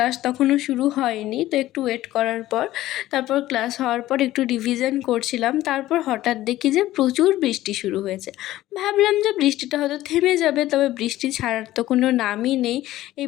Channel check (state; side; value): quieter; right; 15.2 dB